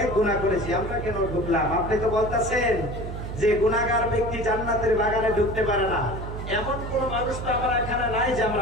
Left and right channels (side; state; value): right; noise; hum, 7 dB below the sound